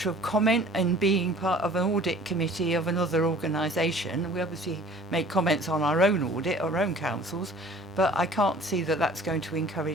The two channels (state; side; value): normal; both; correlation 0.49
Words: of comment in being part of an audit committee of another organisation. We obviously make comments on our own audit, our own councils, but I can't see that that's going to